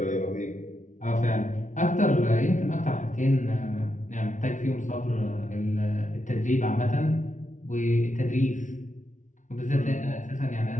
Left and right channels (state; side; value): late; right; 0.37 ms